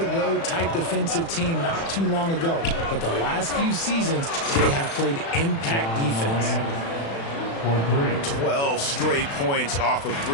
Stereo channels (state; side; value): late; right; 36 ms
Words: type defensive team not too long ago. But the last few seasons, they have played impact defense. 12 straight points off of